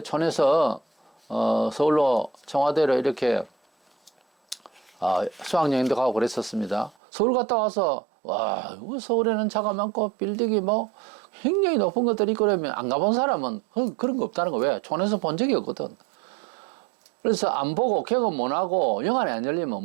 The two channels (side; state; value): left; drops out; at 7.0 s